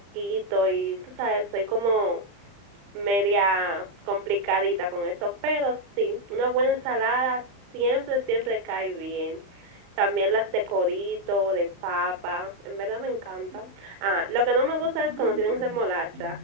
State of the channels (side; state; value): left; late; 35 ms